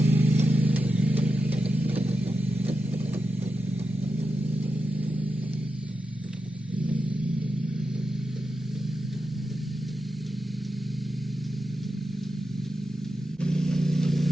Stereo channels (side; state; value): both; normal; correlation 0.89